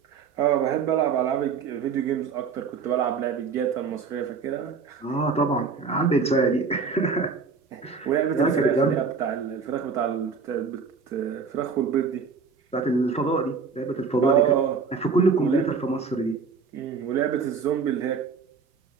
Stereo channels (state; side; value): quieter; left; 5.3 dB